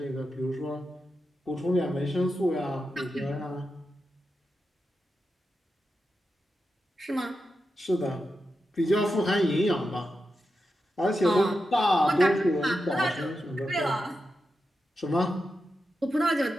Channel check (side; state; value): both; normal; correlation 0.89